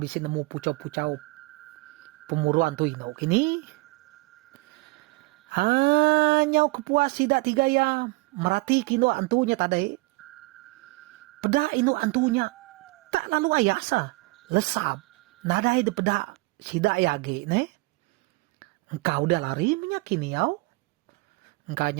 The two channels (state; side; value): quieter; left; 25.0 dB